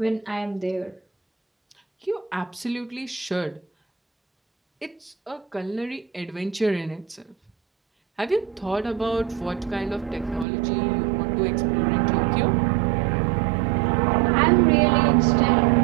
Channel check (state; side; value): drops out; left; at 10.5 s